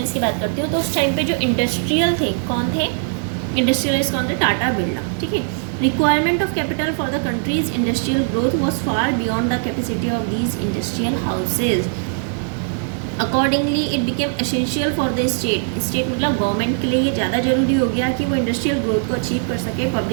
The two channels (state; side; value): silent; left; 66 dB below the other